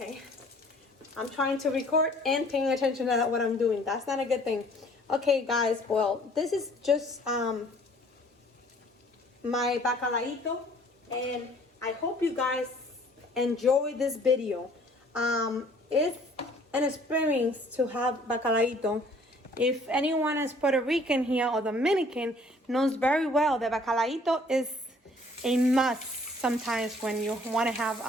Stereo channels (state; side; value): normal; both; correlation 0.56